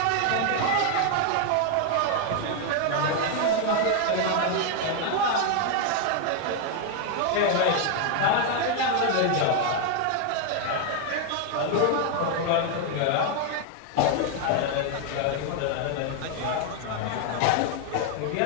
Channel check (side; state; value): both; different; correlation 0.00